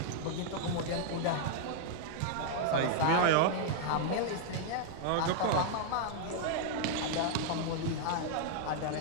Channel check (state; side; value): different; both; correlation 0.00